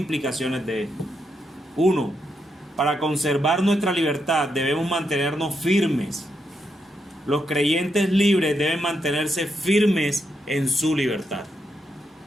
de esto. Uno, para conservar nuestra libertad debemos mantenernos firmes. Los creyentes libres deben mantenerse firmes en su libertad.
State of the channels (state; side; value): normal; both; correlation 0.82